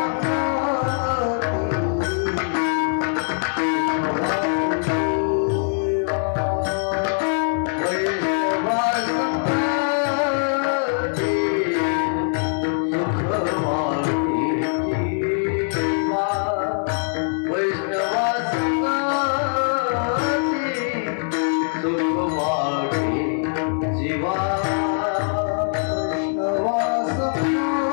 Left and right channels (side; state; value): right; silent; 64 dB below the other